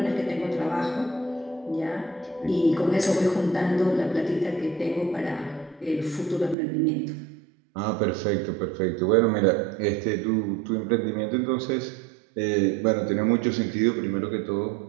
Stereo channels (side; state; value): left; drops out; at 6.6 s